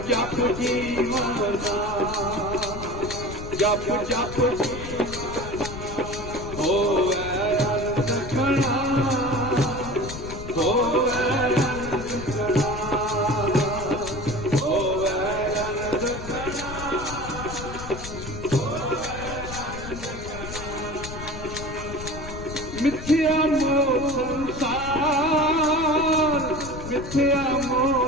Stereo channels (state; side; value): noise; left; rumble, 10 dB below the sound